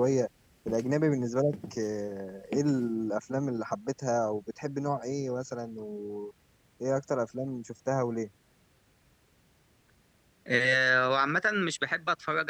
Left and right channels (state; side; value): identical; both; correlation 1.00